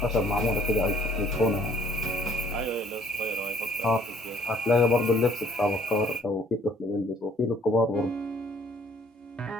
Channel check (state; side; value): normal; both; correlation 0.60